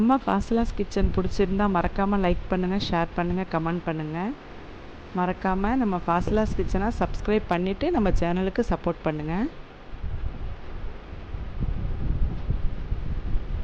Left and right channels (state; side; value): identical; both; correlation 1.00